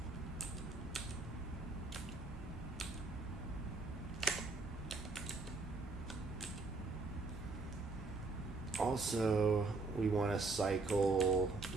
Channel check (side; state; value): left; quieter; 3.7 dB